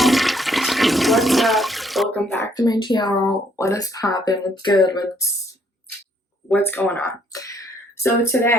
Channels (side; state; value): both; normal; correlation 0.67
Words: what's up? Welcome back to my channel. What is poppin'? What's good? What's going on? So